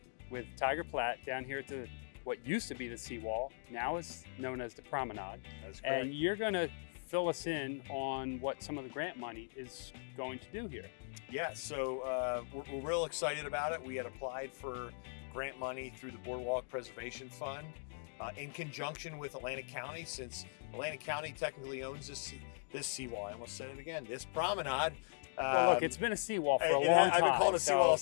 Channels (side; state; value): right; silent; digital silence